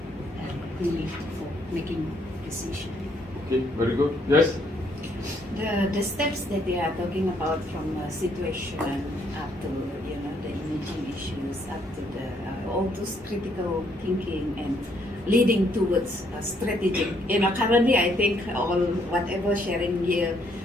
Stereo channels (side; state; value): both; normal; correlation 0.69